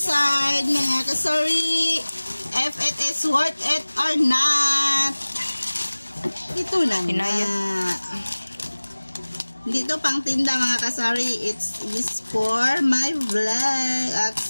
mga kasari. If it is worth it or not. Ito na nga. Dito pang tinda mga kasari. It's for my vlog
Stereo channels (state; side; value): inverted; both; correlation -1.00